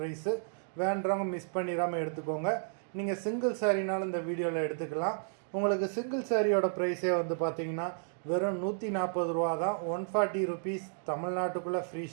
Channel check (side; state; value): left; silent; digital silence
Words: வேண்டவங்க மிஸ் பண்ணிடாமல் எடுத்துக்கோங்க. நீங்கள் சிங்கிள் சாரீனாலும் இந்த வீடியோவில் எடுத்துக்கலாம். உங்களுக்கு சிங்கிள் சாரியோட ப்ரைஸே வந்து பார்த்தீங்கன்னா வெறும் 140 ரூபா தான். 140 ருபீஸ் தமிழ்நாட்டுக்குள்ளே ஃப்ரீ